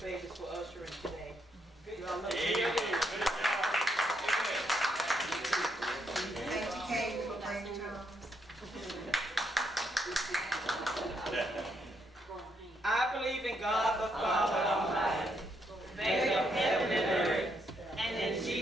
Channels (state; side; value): normal; both; correlation 0.76